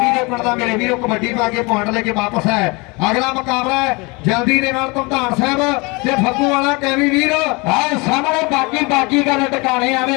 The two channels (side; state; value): right; quieter; 27.1 dB